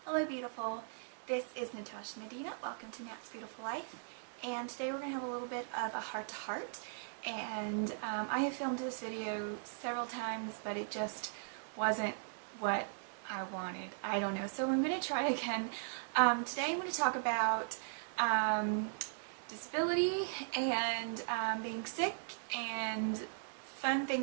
Hello beautiful, this is Natasha Medina. Welcome to Nat's Beautiful Life, and today we're going to have a little bit of a heart-to-heart, and I have filmed this video several times, but it just wasn't what I wanted. I don't know, so I'm going to try again. Today I'm going to talk about disability and being sick and fun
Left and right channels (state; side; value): silent; left; digital silence